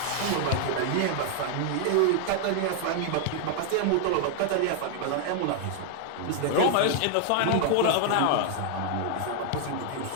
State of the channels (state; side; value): different; both; correlation 0.00